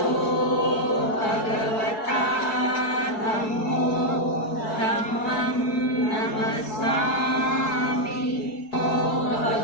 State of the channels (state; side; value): late; right; 4.6 ms